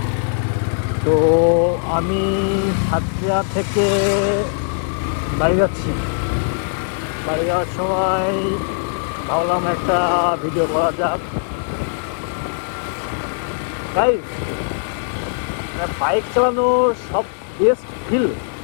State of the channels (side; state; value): right; silent; digital silence